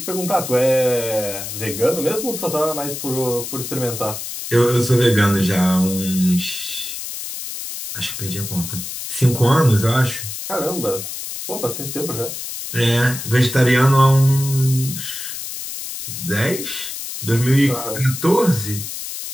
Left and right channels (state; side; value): noise; left; hiss, 7 dB below the sound